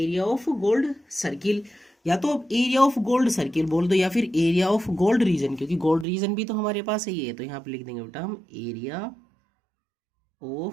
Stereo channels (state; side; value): drops out; left; at 6.1 s